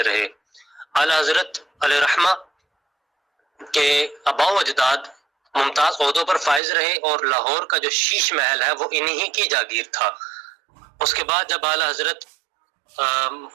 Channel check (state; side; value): drops out; left; at 6.6 s